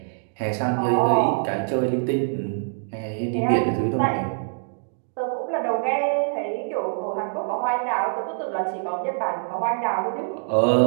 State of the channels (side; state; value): left; silent; digital silence